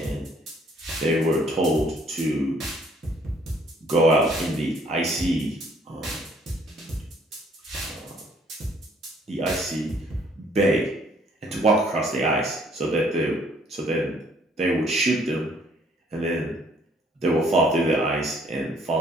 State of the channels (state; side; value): normal; both; correlation 0.63